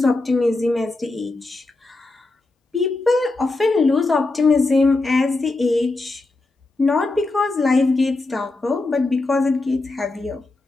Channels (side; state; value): right; quieter; 3.1 dB